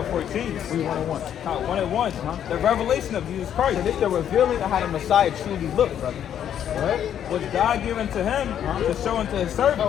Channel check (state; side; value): quieter; right; 9.7 dB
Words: 14. We 101. 1 and 1. The revelation of Jesus Christ. So this is the revealing of how the Messiah truly looked, brother. Right? Was God given to him to show unto his